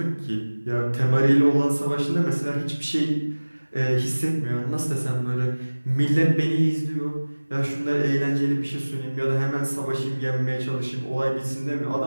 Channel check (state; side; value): inverted; both; correlation -1.00